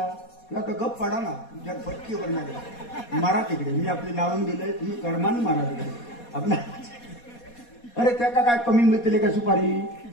किंवा तो गप पडा ना तुमच्या पटकीवर नाही मारा तिकडे. मी आपली लावून दिलंय, तुम्ही कर्माने मारा तिकडे आपल्या. अरे त्याका काय कमी मिळतील का सुपारी,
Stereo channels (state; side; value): late; right; 4.2 ms